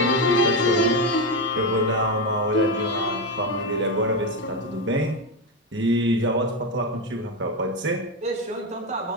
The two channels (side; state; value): both; normal; correlation 0.11